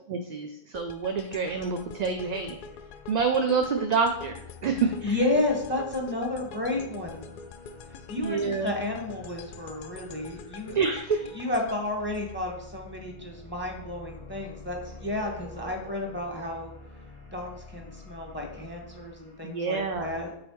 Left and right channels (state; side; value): late; right; 2.3 ms